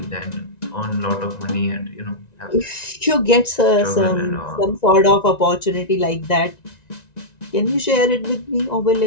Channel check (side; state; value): right; late; 1.9 ms